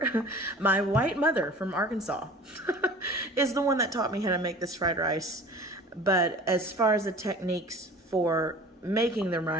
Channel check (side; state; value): both; normal; correlation 0.42